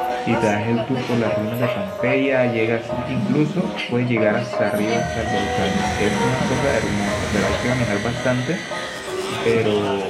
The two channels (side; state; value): both; identical; correlation 1.00